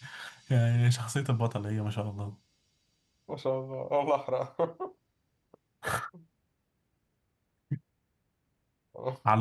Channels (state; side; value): identical; both; correlation 1.00